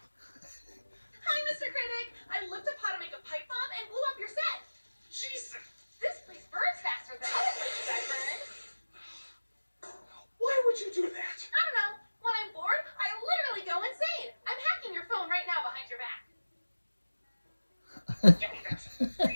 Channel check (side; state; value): both; inverted; correlation -1.00